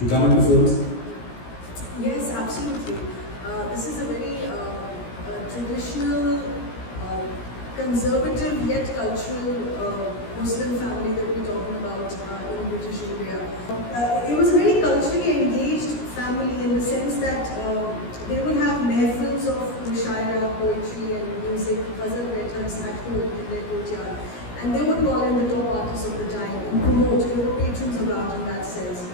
come into films? Yes, absolutely. This is a very traditional, conservative yet cultural Muslim family that we're talking about in British India. It was a very culturally engaged family in the sense that they would have mehfils of mushaira, poetry and music, ghazal writers at home in their courtyard. And they would call in the top artists of the time and promote. They were patrons of art in that sense.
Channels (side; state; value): right; late; 17 ms